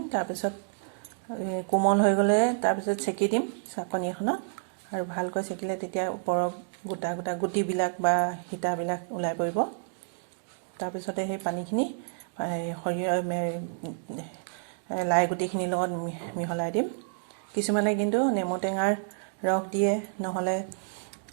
তাৰ পিছত কোমল হৈ গলে তাৰ পিছত চেকি দিম চাকনি এখনত আৰু ভালকৈ চেকিলে তেতিয়া ওপৰৰ গোটা গোটা গুটিবিলাক বা হিতাবিলাক ওলাই পৰিব তাৰ পিছতে সেই পানীখিনি সৰিয়হ লাই গুটিখিনিৰ লগত মিহলাই দিম কিছুমানে কিন্তু নেমু টেঙাৰ ৰস দিয়ে নহলে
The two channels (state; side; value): silent; left; digital silence